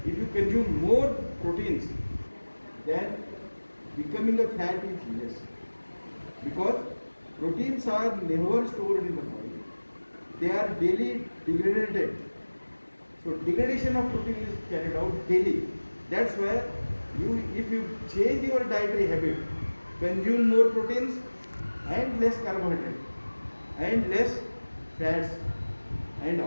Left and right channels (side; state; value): both; inverted; correlation -1.00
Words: if you consume more proteins, then becoming a fat is less. Because proteins are never stored in the body. They are daily degraded. So degradation of protein is carried out daily. That's why if you change your dietary habit, consume more proteins and less carbohydrate and less fats and